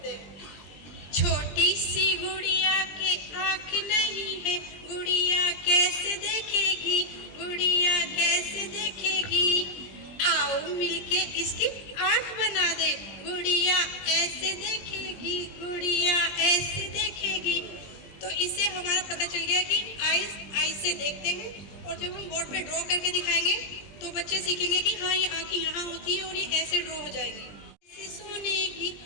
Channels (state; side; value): late; right; 20 ms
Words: हैं। छोटी सी गुड़िया के आँख नहीं है, गुड़िया कैसे देखेगी, गुड़िया कैसे देखेगी, आओ मिलके इसकी आँख बना दे, गुड़िया ऐसे देखेगी, गुड़िया ऐसे देखेगी। तो इससे हमारा पता चल गया कि आइज से देखते हैं, और जब हम बोर्ड पे ड्रॉ करके दिखाएंगे तो बच्चे सीखेंगे कि हाँ ये आँखें यहाँ होती है और ये ऐसे ड्रॉ हो जाएंगी। कैसे सुनेगी